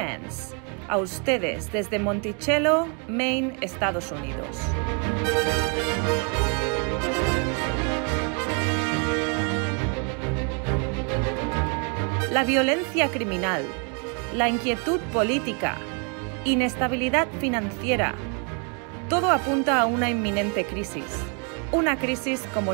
a ustedes desde Monticello, Maine, Estados Unidos. La violencia criminal, la inquietud política, inestabilidad financiera, todo apunta a una inminente crisis, una crisis como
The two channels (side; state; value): left; quieter; 37.4 dB